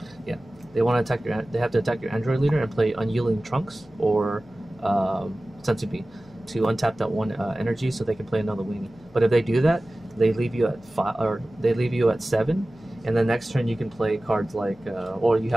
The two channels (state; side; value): noise; left; hum, 29 dB below the sound